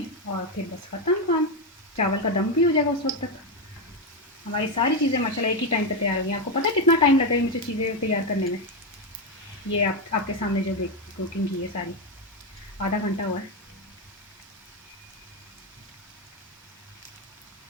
और फिर बस ख़त्म काम। चावल का दम भी हो जाएगा उस वक्त तक। हमारी सारी चीज़ें माशाल्लाह एक ही टाइम पे तैयार हो गई। आपको पता है कितना टाइम लगा है मुझे चीज़ें तैयार करने में? ये आपके सामने जो कुकिंग की है सारी, आधा घंटा हुआ है।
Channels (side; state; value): both; normal; correlation 0.08